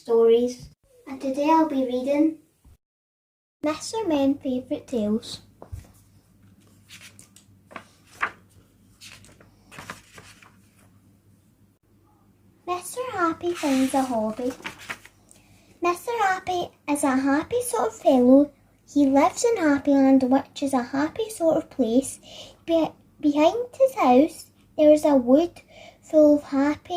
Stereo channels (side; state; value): both; identical; correlation 1.00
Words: and today I'll be reading Mr. Men's Favourite Tales. Mr. Happy finds a hobby. Mr. Happy is a happy sort of fellow. He lives in Happyland, which is a happy sort of place. Behind his house there is a wood full of